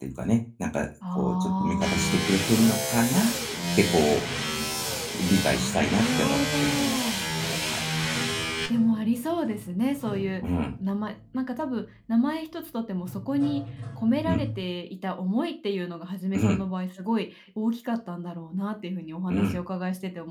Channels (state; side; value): identical; both; correlation 1.00